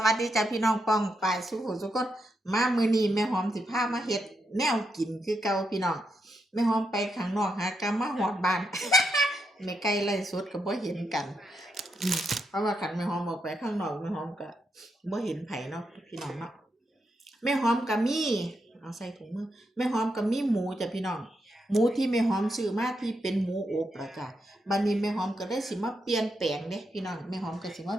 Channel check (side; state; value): both; normal; correlation 0.82